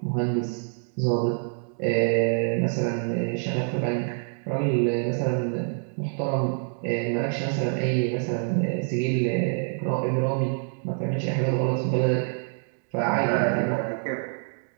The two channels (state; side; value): silent; left; 61 dB below the other